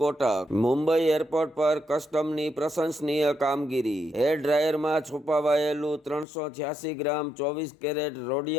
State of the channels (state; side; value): drops out; right; at 6.2 s